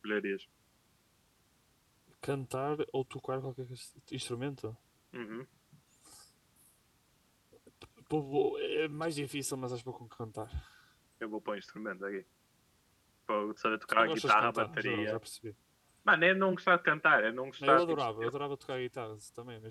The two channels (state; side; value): identical; both; correlation 1.00